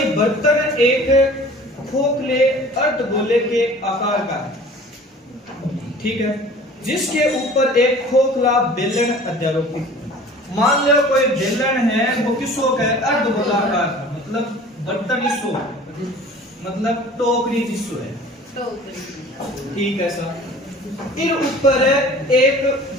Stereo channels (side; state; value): both; normal; correlation 0.45